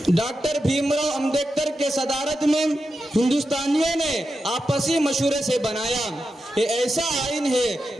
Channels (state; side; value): normal; both; correlation 0.89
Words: में हिंदुस्तानियों ने आपसी मशवरे से बनाया। ये ऐसा आइन है